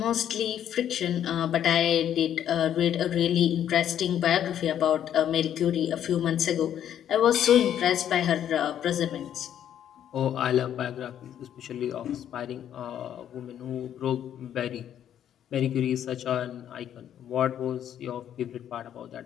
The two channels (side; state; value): right; quieter; 10.2 dB